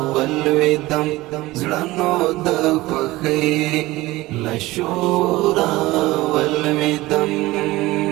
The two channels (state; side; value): quieter; left; 19.0 dB